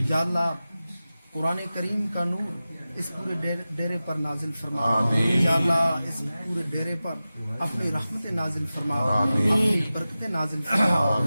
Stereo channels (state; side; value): inverted; both; correlation -0.95